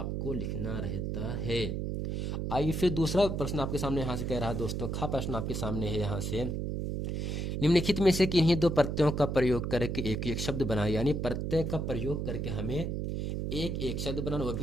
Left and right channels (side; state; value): right; noise; hum, 2 dB below the sound